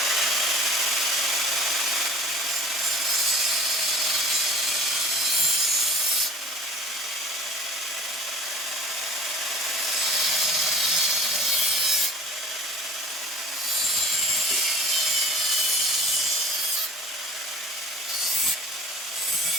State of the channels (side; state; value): both; normal; correlation 0.44